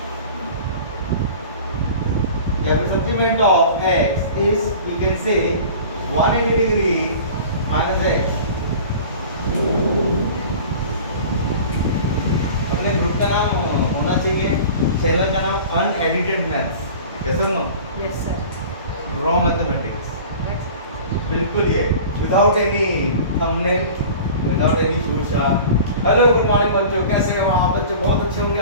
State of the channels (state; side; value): inverted; both; correlation -0.40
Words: या फिर supplement of x is you can say 180 degree minus x. अपने group का नाम होना चाहिए, चैनल का नाम अनएडिटेड मैथ्स. यस और no? Yes, sir. Raw mathematics. बिल्कुल ये without any thumbnail, without any शूशा. हेलो, गुड मॉर्निंग बच्चों, कैसे हो आप? बच्चों बहुत अच्छे होंगे